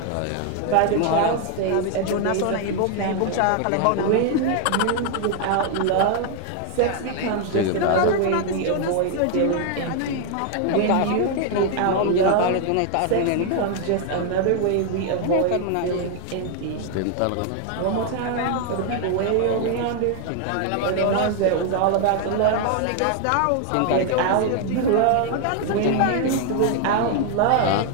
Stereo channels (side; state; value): both; different; correlation 0.00